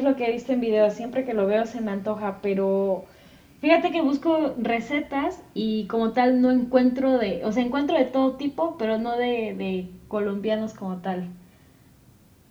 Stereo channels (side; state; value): both; identical; correlation 1.00